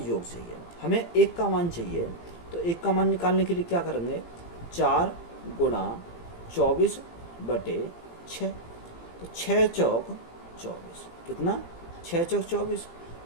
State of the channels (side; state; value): right; late; 17 ms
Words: चाहिए। हमें 1 का मान चाहिए, तो 1 का मान निकालने के लिए क्या करेंगे? 4 गुणा 24 बटे 6। तो 6 चौक 24 कितना? 6 चौक 24